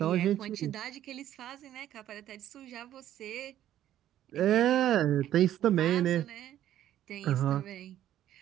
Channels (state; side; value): quieter; left; 12.1 dB